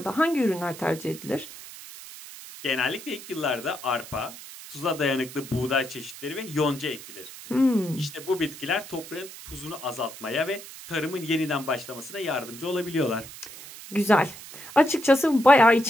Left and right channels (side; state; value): right; noise; hiss, 15 dB below the sound